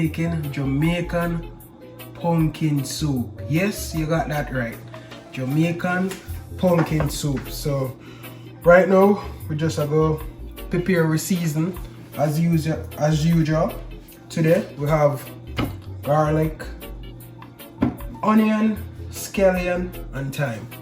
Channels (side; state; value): both; identical; correlation 1.00